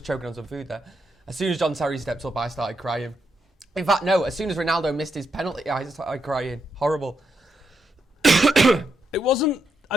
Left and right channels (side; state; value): both; normal; correlation 0.81